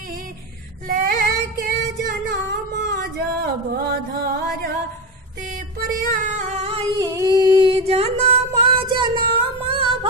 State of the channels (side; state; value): both; normal; correlation 0.16